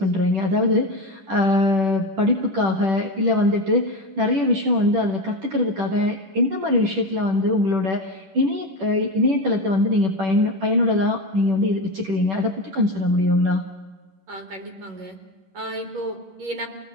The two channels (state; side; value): late; left; 10 ms